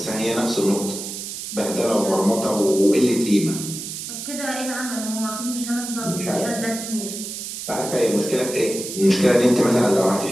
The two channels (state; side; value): noise; right; hiss, 8 dB below the sound